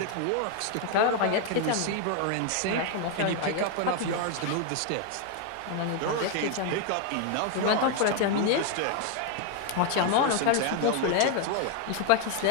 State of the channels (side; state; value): both; different; correlation 0.01